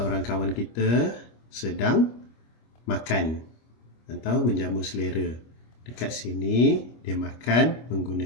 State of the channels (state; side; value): late; right; 25 ms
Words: kawan kita sedang makan atau menjamu selera. Dekat sini dia makan